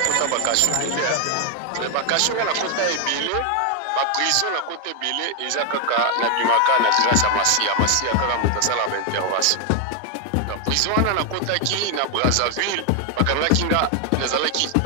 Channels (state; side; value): different; both; correlation 0.01